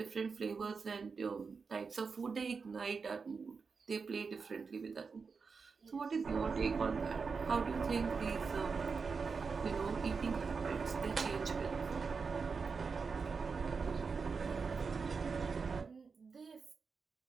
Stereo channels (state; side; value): quieter; left; 5.1 dB